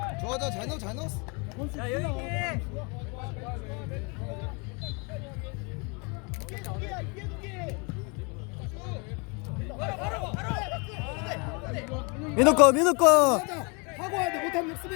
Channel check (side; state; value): right; quieter; 32.3 dB